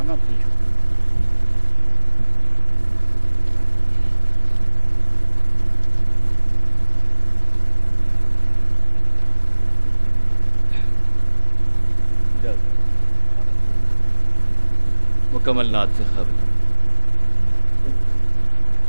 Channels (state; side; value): inverted; both; correlation -1.00